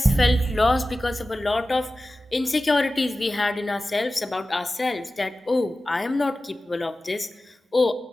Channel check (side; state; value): both; normal; correlation 0.95